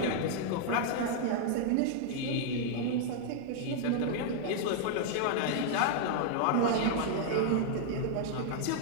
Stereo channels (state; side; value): different; both; correlation -0.01